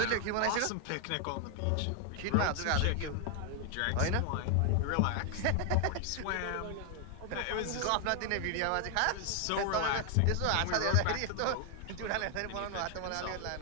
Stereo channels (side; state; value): both; different; correlation 0.00